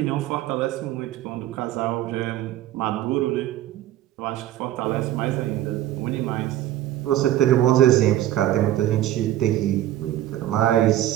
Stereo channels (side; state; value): left; quieter; 13.4 dB